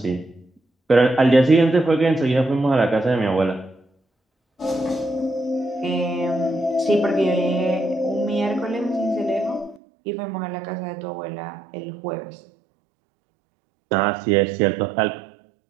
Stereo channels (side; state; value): left; drops out; at 9.8 s